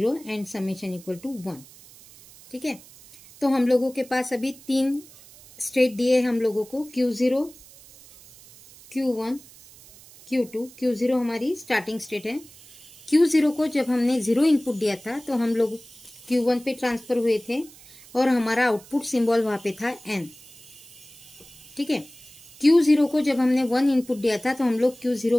and summation equal to 1। ठीक है, तो हम लोगों के पास अभी 3 स्टेट दिए हम लोगों को, Q0, Q1, Q2। Q0 हमारी स्टार्टिंग स्टेट है। Q0 को जब हमने 0 इनपुट दिया था तो हम लोग Q1 पे ट्रांसफर हुए थे और हमारा आउटपुट सिंबल वहां पे था N। ठीक है, Q0 को जब हमने 1 इनपुट दिया था तो हम लोग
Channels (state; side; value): noise; right; hiss, 22 dB below the sound